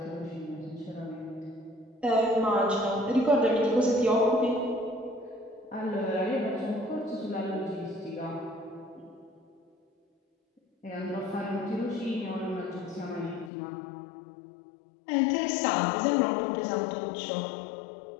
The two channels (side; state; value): right; drops out; at 13.5 s